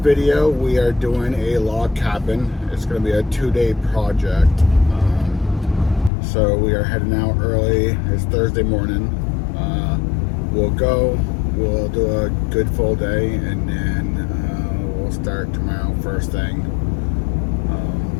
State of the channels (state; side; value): drops out; right; at 6.1 s